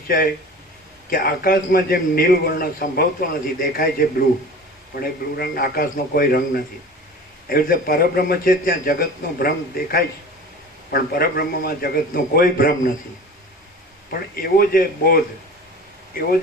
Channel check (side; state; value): both; normal; correlation 0.38